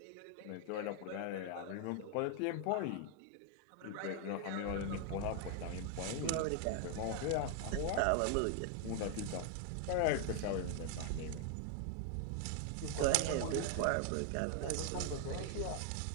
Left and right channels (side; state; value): both; different; correlation 0.00